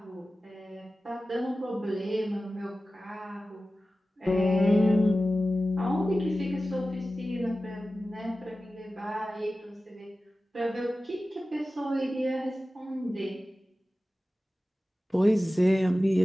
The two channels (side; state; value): both; normal; correlation 0.95